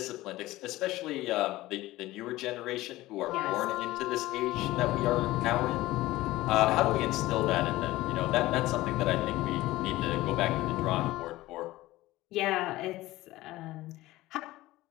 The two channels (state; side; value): quieter; right; 17.5 dB